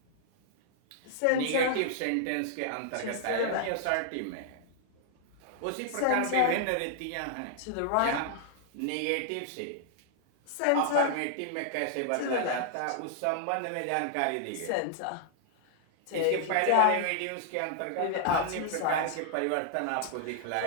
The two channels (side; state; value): both; different; correlation -0.01